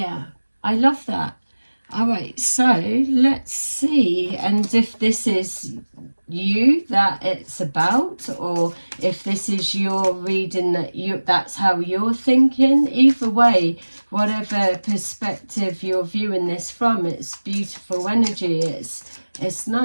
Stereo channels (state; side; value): inverted; both; correlation -1.00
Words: I love that. All right, so let's see, and if this is you that it's about, or if this is your reading that's how you're thinking. Either way, whatever perspective you're viewing this from, it's beautiful energy. It's